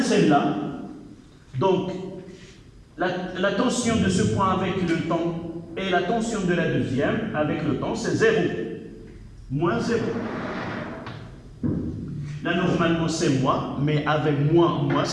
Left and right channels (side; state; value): both; identical; correlation 1.00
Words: celle-là. Donc, la tension de ce point avec le temps et la tension de la deuxième avec le temps, c'est 0. Moins 0. Là, normalement, c'est moins, mais avec moins,